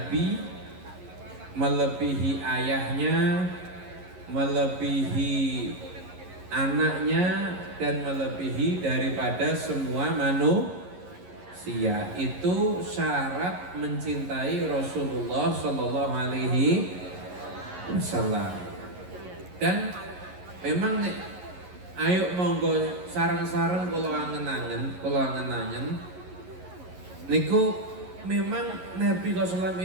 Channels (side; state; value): left; late; 11 ms